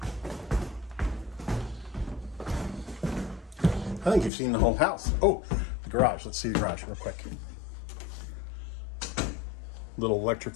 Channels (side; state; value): right; drops out; at 4.3 s